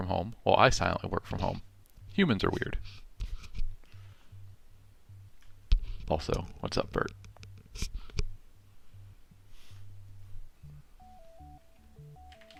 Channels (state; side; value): identical; both; correlation 1.00